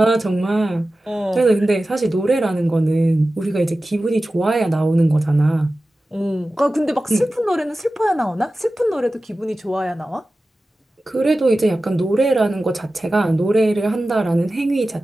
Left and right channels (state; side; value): normal; both; correlation 0.95